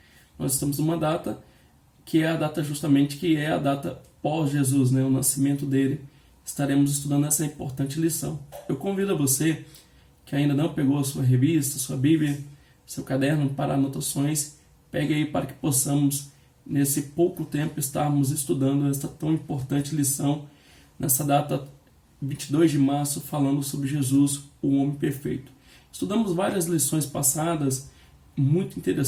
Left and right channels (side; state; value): both; identical; correlation 1.00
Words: nós estamos numa data que é a data justamente que é a data pós-Jesus, né, o nascimento dele. Estaremos estudando essa importante lição. Eu convido a você que ainda não pegou a sua revista, sua Bíblia, seu caderno para anotações, pegue aí para que possamos, nesse pouco tempo, estarmos estudando esta tão importante lição, nessa data 22 de março, falando sobre Jesus, o homem perfeito. Estudamos várias lições passadas, muito